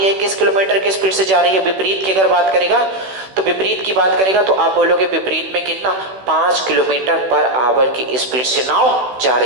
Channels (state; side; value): late; left; 16 ms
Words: है किस किलोमीटर की स्पीड से जा रही है? विपरीत की अगर बात करेगा तो विपरीत की बात करेगा तो आप बोलोगे विपरीत में कितना? 5 किलोमीटर पर आवर की स्पीड से नाव जा